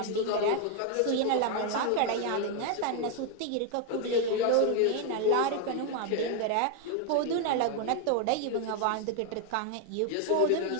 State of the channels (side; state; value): both; different; correlation 0.00